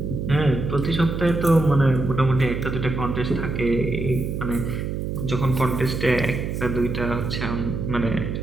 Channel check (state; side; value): noise; right; hum, 3 dB below the sound